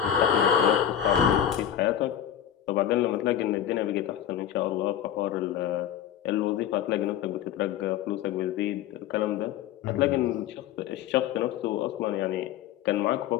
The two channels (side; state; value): right; quieter; 10.4 dB